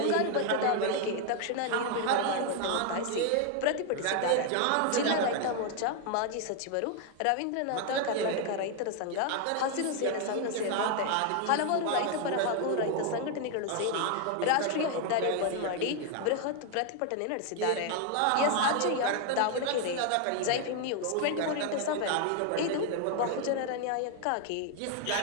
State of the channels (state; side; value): different; both; correlation 0.00